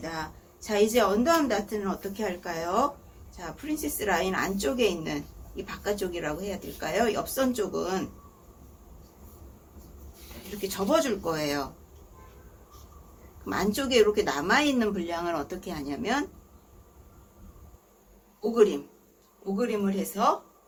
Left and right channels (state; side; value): identical; both; correlation 1.00